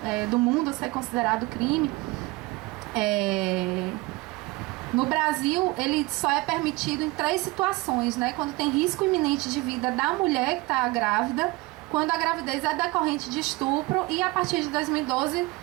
do mundo ser considerado crime, no Brasil ele só é permitido em 3 situações, né? Quando tem risco iminente de vida da mulher que está grávida, quando a gravidez é decorrente de estupro, e a partir de 2012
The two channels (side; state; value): left; quieter; 22.8 dB